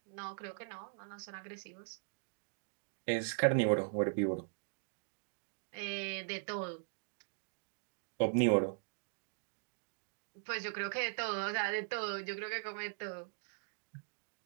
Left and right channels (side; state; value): left; silent; digital silence